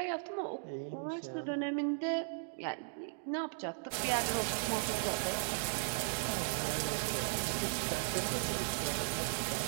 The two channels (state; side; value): silent; left; digital silence